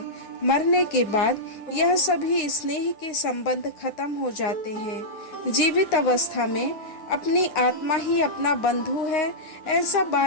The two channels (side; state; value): right; late; 9.6 ms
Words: मरने के बाद यह सभी स्नेह के संबंध खत्म हो जाते हैं। जीवित अवस्था में अपनी आत्मा ही अपना बंधु है, ऐसा